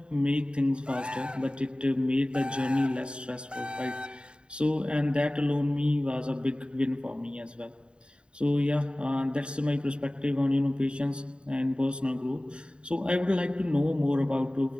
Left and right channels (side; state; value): left; late; 0.052 ms